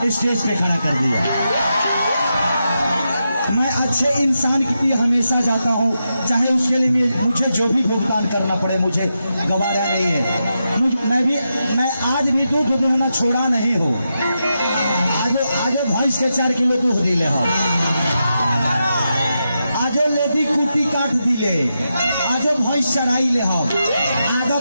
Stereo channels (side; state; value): both; inverted; correlation -0.87